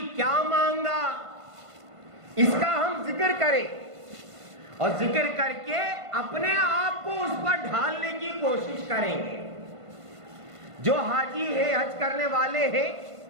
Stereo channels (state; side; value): late; left; 1.5 ms